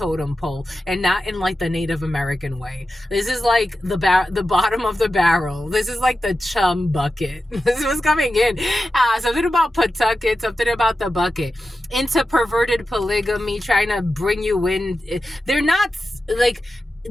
pole and not in like the Native American way. This is like the bottom of the barrel. This is like the chum bucket. This is what's coming in. Something about Pawtucket, something about the bucket. Into perverted polygamy, trying to bring you in. They're not like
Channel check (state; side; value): normal; both; correlation 0.91